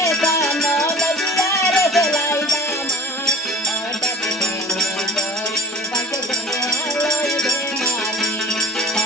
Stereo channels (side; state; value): both; normal; correlation 0.44